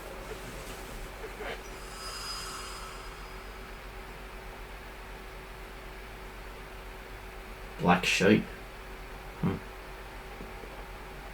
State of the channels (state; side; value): identical; both; correlation 1.00